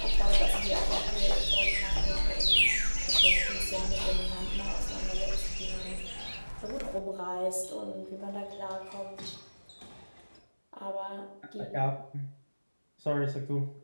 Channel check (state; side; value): inverted; both; correlation -1.00